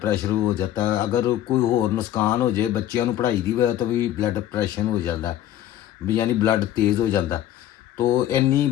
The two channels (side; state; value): right; quieter; 12.2 dB